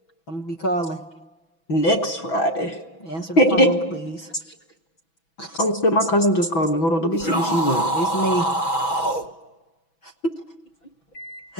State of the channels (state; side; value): late; right; 6.1 ms